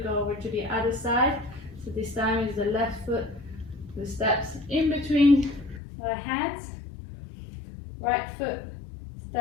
go over to the other side. So this time is the left foot the steps in between our hands. Right foot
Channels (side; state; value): right; drops out; at 5.8 s